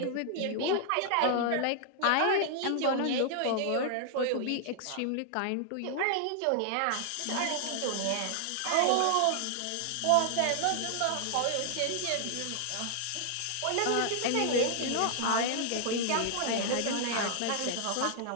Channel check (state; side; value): different; both; correlation 0.00